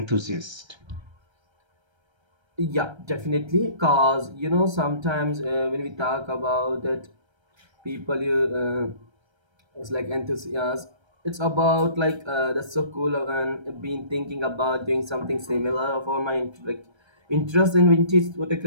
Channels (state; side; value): late; left; 1.3 ms